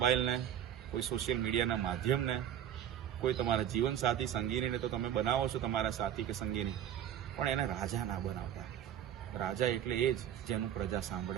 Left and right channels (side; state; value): left; quieter; 10.3 dB